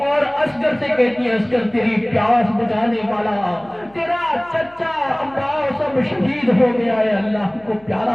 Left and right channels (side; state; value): left; noise; hum, 29 dB below the sound